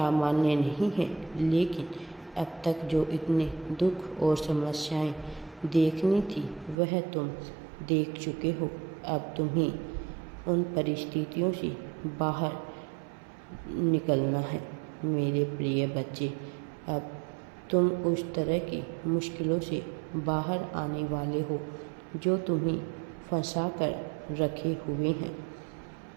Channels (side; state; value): left; drops out; at 6.8 s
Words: नहीं है, लेकिन अब तक जो इतने दुख और समस्याएं देखनी थी वह तुम देख चुके हो। अब तुम्हें उन परिस्थितियों से बाहर निकलना है। मेरे प्रिय बच्चे, अब तुम उस तरह की मुश्किलों से बाहर आने वाले हो जो तुम्हें फंसा कर रखे हुए हैं।